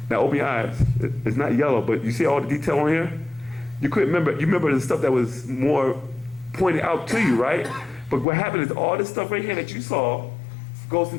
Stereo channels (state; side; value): drops out; right; at 8.2 s